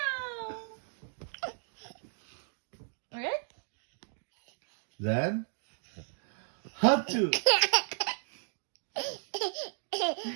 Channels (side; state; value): left; silent; digital silence